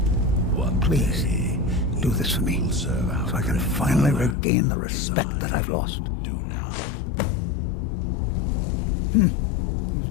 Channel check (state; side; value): drops out; right; at 4.4 s